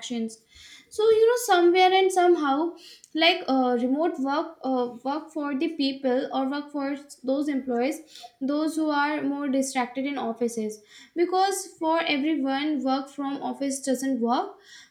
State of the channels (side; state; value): both; identical; correlation 1.00